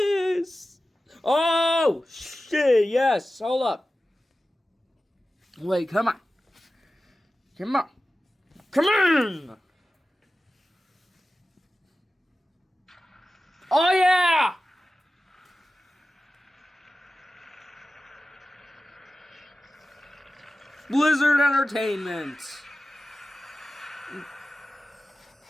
Oh, shit, yes. Hold up. Wait, come on. Come on. Come on. Oh, yeah. Blizzard Entertainment.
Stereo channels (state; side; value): normal; both; correlation 0.95